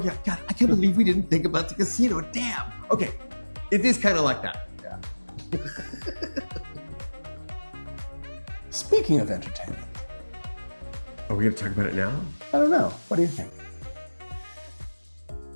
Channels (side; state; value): both; inverted; correlation -1.00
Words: yeah, God, I can't believe we didn't think about the casino. Damn. Okay, it is kind of like that. Yeah. Speaking of entertainment, Are we gonna talk about it now? I don't know. What do you think?